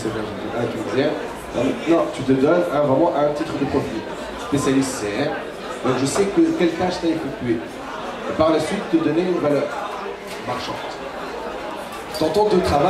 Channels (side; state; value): both; identical; correlation 1.00